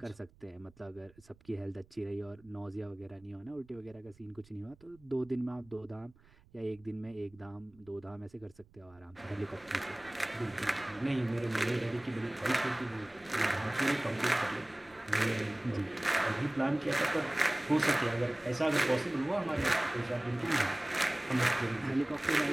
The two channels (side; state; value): right; noise; rumble, 28 dB below the sound